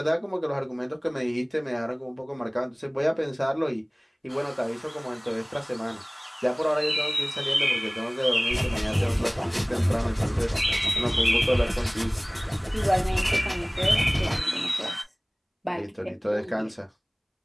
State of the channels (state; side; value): identical; both; correlation 1.00